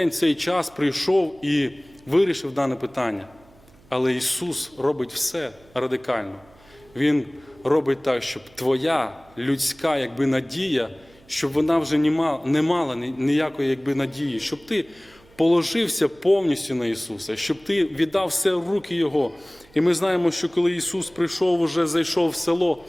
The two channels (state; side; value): noise; right; hum, 28 dB below the sound